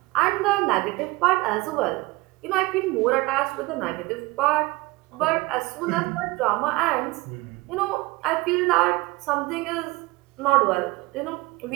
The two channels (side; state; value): left; quieter; 22.1 dB